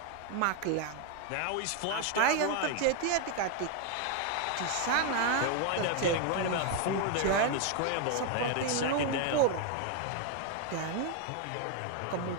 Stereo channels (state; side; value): different; both; correlation 0.01